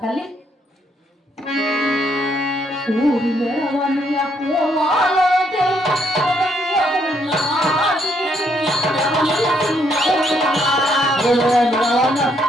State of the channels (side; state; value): both; normal; correlation 0.72